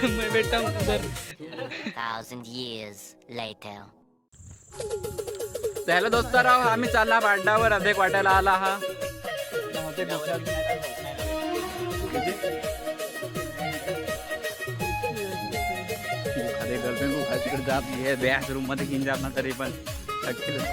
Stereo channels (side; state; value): both; identical; correlation 1.00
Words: मैं बैठा हूँ उधर। 1,000 years later. हॅलो दोस्ताराव, आम्ही चालला पाड्यावर अधिक वाटायला आला हा. गर्लफ्रेंड को तिकडे जात घे बॅच रूम मध्ये घेऊन जात ना तरी पण